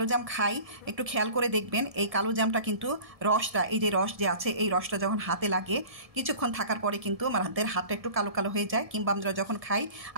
জাম খাই, একটু খেয়াল করে দেখবেন এই কালো জামটা কিন্তু রসটা, এই যে রস যে আছে, এই রসটা যখন হাতে লাগে কিছুক্ষণ থাকার পরে কিন্তু আমাদের হাতটা একটু কালো কালো হয়ে যায়, কিংবা আমরা যখন খাই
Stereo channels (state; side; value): late; left; 1.7 ms